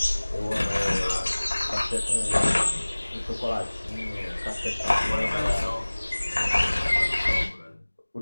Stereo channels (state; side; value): inverted; both; correlation -1.00